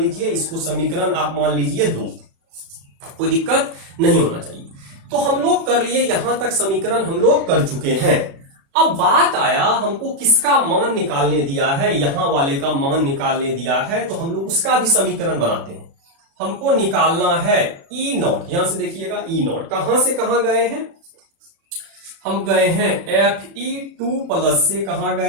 इसको समीकरण आप मान लीजिए 2। कोई दिक्कत नहीं होना चाहिए। तो हम लोग कर लिए, यहां तक समीकरण हम लोग कर चुके हैं। अब बात आया हमको किसका मान निकालने दिया है, यहां वाले का मान निकालने दिया है, तो हम लोग उसका भी समीकरण बनाते हैं। हमको निकालना है ई नॉट। यहां से देखिएगा ई नॉट कहां से कहां गए हैं, हम गए हैं Fe2 प्लस से कहां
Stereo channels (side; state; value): left; late; 36 ms